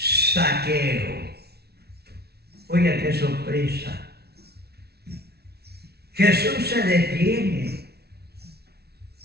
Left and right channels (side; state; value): left; late; 0.47 ms